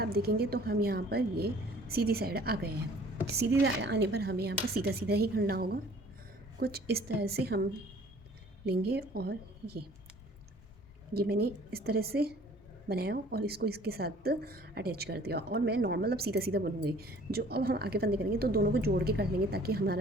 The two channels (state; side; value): normal; both; correlation 0.53